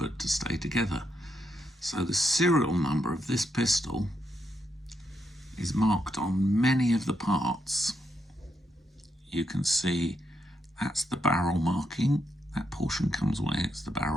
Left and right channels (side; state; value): both; normal; correlation 0.80